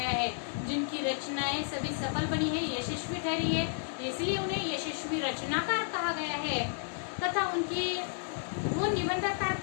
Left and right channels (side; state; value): right; silent; digital silence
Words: है, जिनकी रचनाएं सभी सफल बनी है, यशस्वी ठहरी है, इसलिए उन्हें यशस्वी रचनाकार कहा गया है। तथा उनकी वो निबंधकार